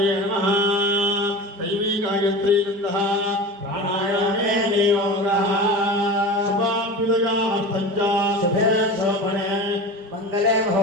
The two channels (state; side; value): late; left; 5.1 ms